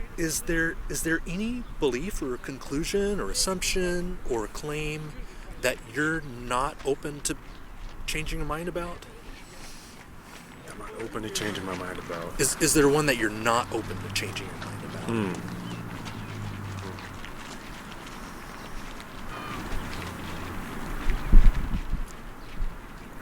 is there any belief or conclusion or assumption or claim that you're not open to changing your mind about? I'm not open to changing my mind about. Is there one that you're not open to changing your mind about?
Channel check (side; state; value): both; identical; correlation 1.00